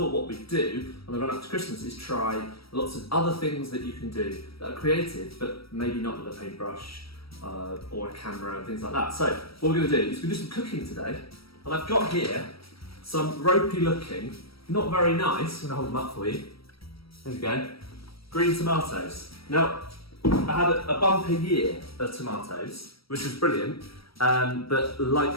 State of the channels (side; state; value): right; late; 0.75 ms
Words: what we'd do on the run up to Christmas is try lots of other things that you can do that are creative, but maybe not with a paintbrush or a camera and things like that. So what we're going to do is we're going to do some cooking today. And I've got here some ropey looking, not very nice, I'm going to hold them up for you. There we go. Green tomatoes. Now, I had a bumper year of tomatoes, which was brilliant, but